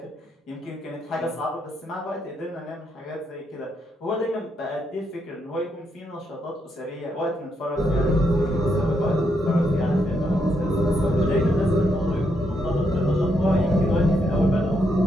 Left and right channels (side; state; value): both; normal; correlation 0.78